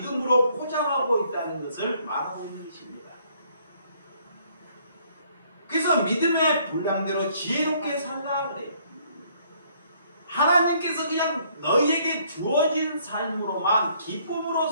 포장하고 있다는 것을 말하고 있는 것입니다. 그래서 믿음의 분량대로 지혜롭게 살라 그래요. 하나님께서 그냥 너희에게 주어진 삶으로만 기쁨으로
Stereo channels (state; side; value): inverted; both; correlation -0.64